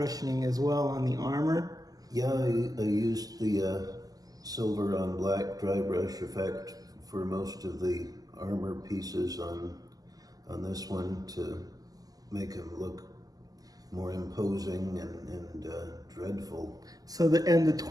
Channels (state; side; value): late; left; 0.17 ms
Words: as well on the armor. Yeah, I used the silver on black dry brush effect for most of the armor pieces on this one to make him look more imposing and dreadful. So the